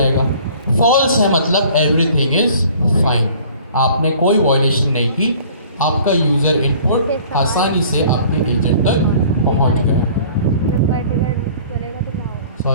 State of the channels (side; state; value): both; inverted; correlation -0.50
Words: फॉल्स है मतलब एवरीथिंग इज फाइन, आपने कोई वॉयलेशन नहीं की, आपका यूज़र इनपुट आसानी से आपके एजेंट तक पहुंच गया।